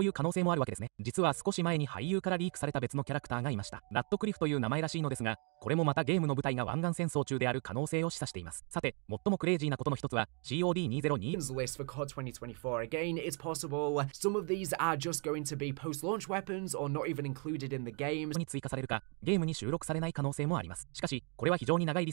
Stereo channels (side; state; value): left; quieter; 37.0 dB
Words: いう可能性もあるわけですね。実は少し前に俳優からリークされた別のキャラクターがいました。ラッドクリフという名前らしいのですが、これもまたゲームの舞台が湾岸戦争中である可能性を示唆しています。さて、最もクレイジーなことの一つは COD2024 list for COD 2024. Again, it's possible some of these are just going to be post-launch weapons or not even included in the game. に追加されるか、ゲームに収録されない可能性もあります。しかし、これは非常に長いリ